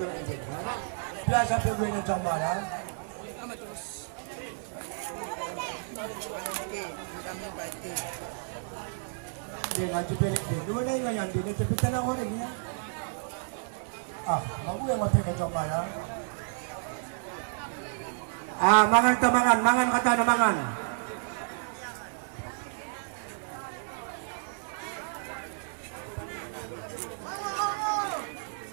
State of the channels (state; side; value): silent; left; 57 dB below the other